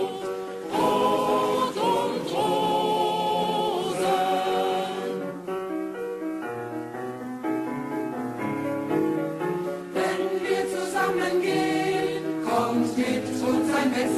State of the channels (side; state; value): both; identical; correlation 1.00